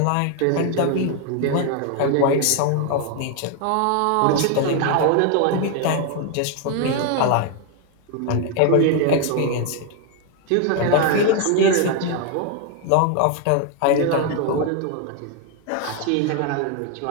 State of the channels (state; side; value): different; both; correlation 0.01